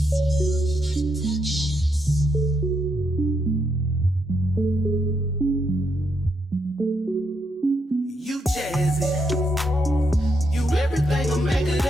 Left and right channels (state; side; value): normal; both; correlation 0.79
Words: jazzy. You everything a man could